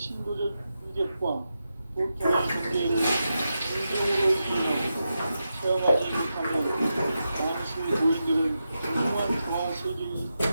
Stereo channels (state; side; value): inverted; both; correlation -0.88